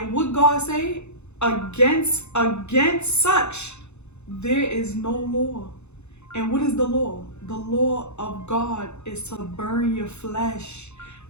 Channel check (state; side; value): late; right; 0.82 ms